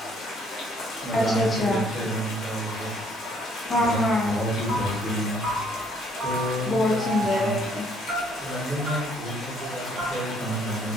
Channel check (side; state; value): both; normal; correlation 0.64